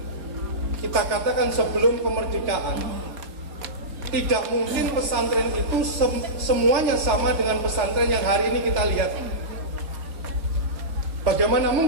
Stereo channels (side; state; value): left; late; 3.5 ms